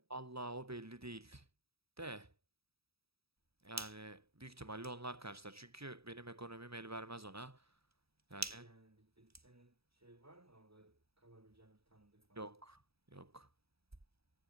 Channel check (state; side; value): late; left; 0.77 ms